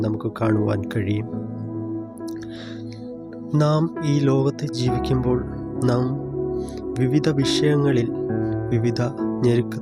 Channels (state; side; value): identical; both; correlation 1.00